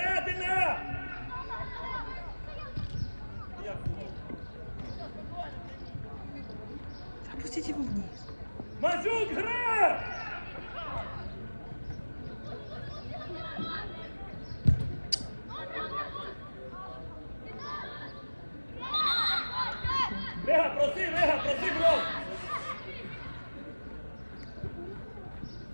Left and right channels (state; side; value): inverted; both; correlation -1.00